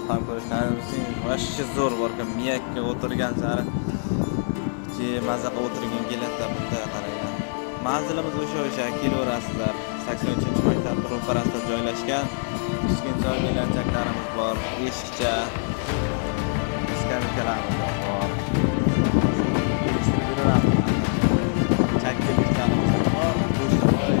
ham ko'rishlaringiz mumkin. Vashchi zo'r borkan, miyakka o'tirgan sari maza qilib o'tirgin keladi bunda qaranglar. Manzilimiz o'sha kelaverasizlar. 83-maktab ro'parasida joylashgan. Kichkintoy belanchaklarimiz bor, eshikcha skameykalarimiz bor. Chakkiliklarimiz bor, go'shovoy,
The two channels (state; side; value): silent; right; 62 dB below the other